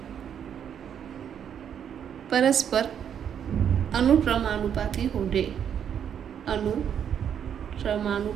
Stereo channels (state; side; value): quieter; left; 8.6 dB